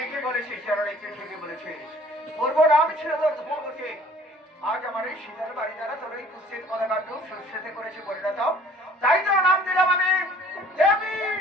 বলেছিস জননী, তুই ঠিকই বলেছিস। পূর্ব নাম ছিল তোর ধূমাবতী। আজ আমার এই শীতের বাড়ি দ্বারা তোর এই কুৎসিত পদাকাণ্ড সুস্থিতি করেছে পরিণত। তাই তোর নাম দিলাম আমি দেবী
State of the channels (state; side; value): normal; both; correlation 0.53